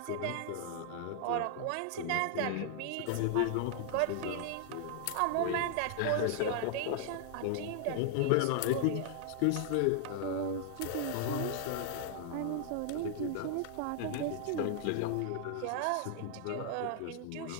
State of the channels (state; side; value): different; both; correlation 0.00